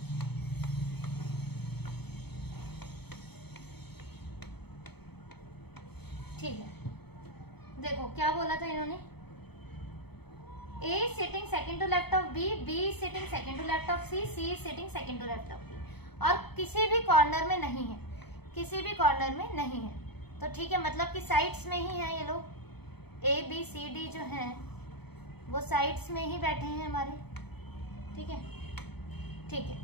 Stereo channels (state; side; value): late; right; 0.98 ms